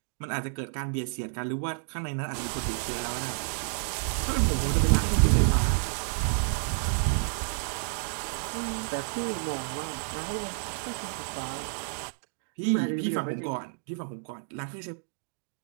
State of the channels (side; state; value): left; silent; digital silence